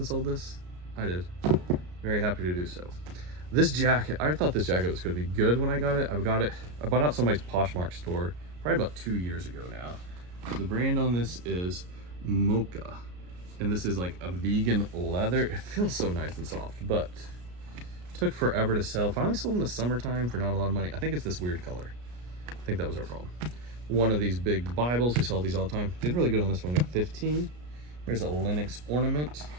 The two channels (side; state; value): left; late; 33 ms